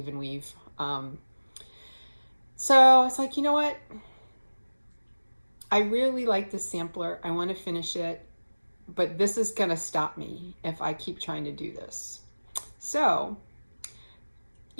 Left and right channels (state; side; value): inverted; both; correlation -1.00